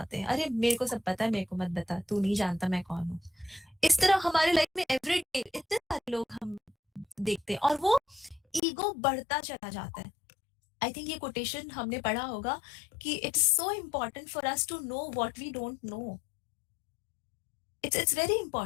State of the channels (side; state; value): right; drops out; at 8.6 s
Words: हैं, अरे मेरे को सब पता है, मेरे को मत बता, तू नहीं जानता मैं कौन हूँ. इस तरह हमारे लाइफ में एवरीडे इतने सारे लोग हम देखते हैं और वो ईगो बढ़ता चला जाता है. आई थिंक ये कोटेशन हमने पढ़ा होगा कि it's so important for us to know what we don't know. It's very